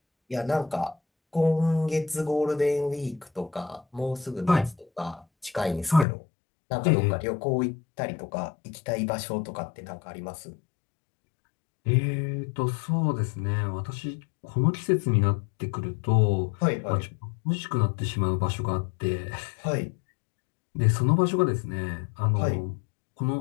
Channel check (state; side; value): drops out; right; at 6.1 s